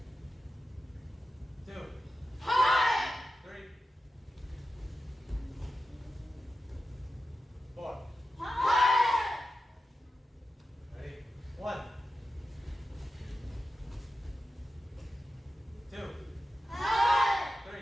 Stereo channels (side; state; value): both; normal; correlation 0.92